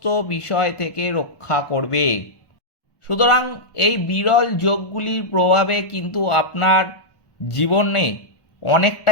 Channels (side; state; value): right; late; 1.1 ms